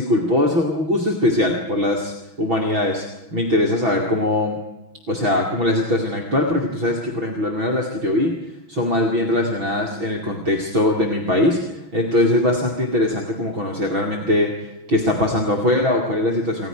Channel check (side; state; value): left; late; 6.1 ms